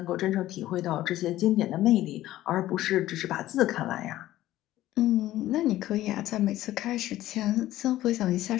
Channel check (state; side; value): quieter; right; 14.7 dB